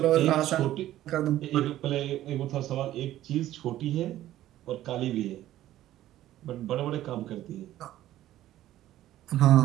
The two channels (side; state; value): left; quieter; 13.7 dB